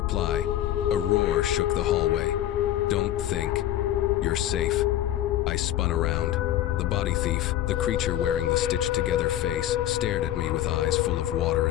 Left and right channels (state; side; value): quieter; right; 12.8 dB